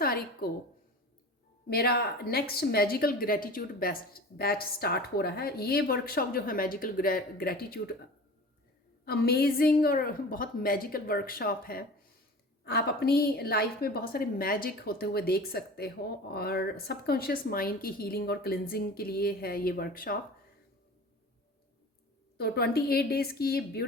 को मेरा next magical gratitude best batch start हो रहा है। ये वर्कशॉप जो है मैजिकल ग्रेटिट्यूड, अमेजिंग और बहुत मैजिकल वर्कशॉप है। आप अपनी लाइफ में बहुत सारे मैजिक होते हुए देख सकते हो और सबकॉन्शियस माइंड की हीलिंग और क्लिनजिंग के लिए है ये वर्कशॉप। तो 28 डेज़ की ये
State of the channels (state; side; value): normal; both; correlation 0.38